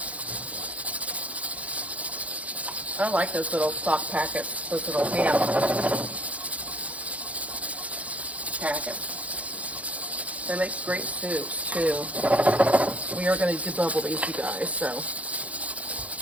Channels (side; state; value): left; late; 0.067 ms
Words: I like those little stock packets, those little ham packets. They make great soups too. We are going to debubble these, you guys, so